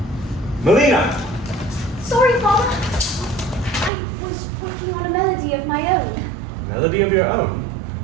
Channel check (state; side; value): drops out; left; at 3.9 s